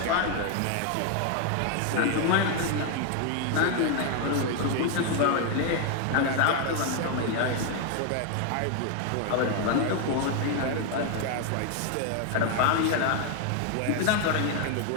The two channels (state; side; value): different; both; correlation 0.01